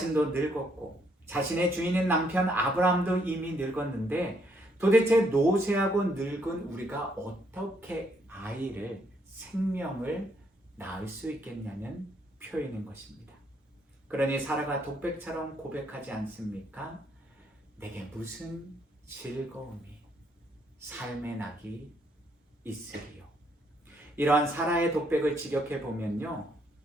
늙었고 자신의 주인인 남편 아브라함도 이미 늙었는데 도대체 노쇠하고 늙은 우리가 어떻게 아이를, 생명을 낳을 수 있겠냐는 표현인 것입니다. 그러니 사라가 독백처럼 고백하지 않습니까? 내게 무슨 즐거움이, 삶의 낙이 있으리요. 이러한 사라의 독백을 직역해 보면요,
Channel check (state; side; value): normal; both; correlation 0.72